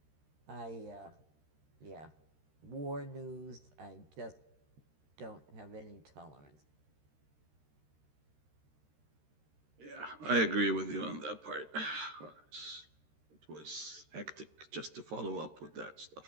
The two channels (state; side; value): late; left; 13 ms